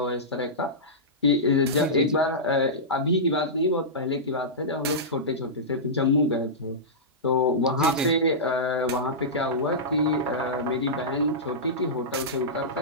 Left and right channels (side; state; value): both; normal; correlation -0.15